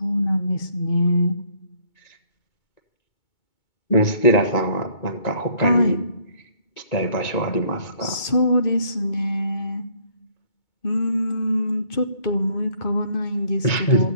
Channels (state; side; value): late; right; 2.2 ms